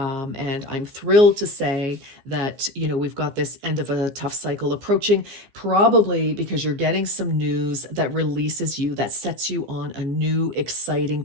I'm thrilled to say that, we've got this end of a tough cycle approaching, probably because you're getting some news that releases you, that sets you on a new, exciting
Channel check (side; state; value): left; late; 15 ms